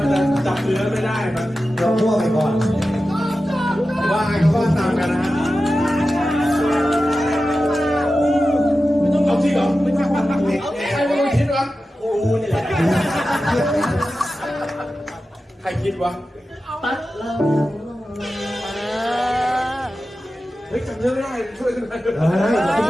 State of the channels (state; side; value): normal; both; correlation 0.93